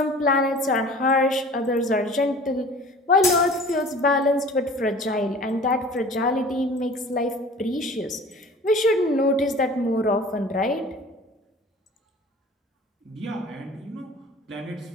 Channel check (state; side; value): normal; both; correlation 0.44